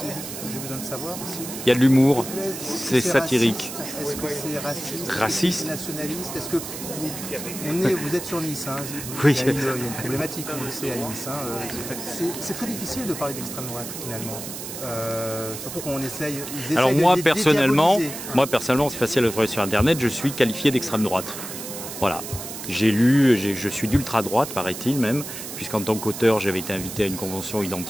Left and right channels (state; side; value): noise; right; hiss, 9 dB below the sound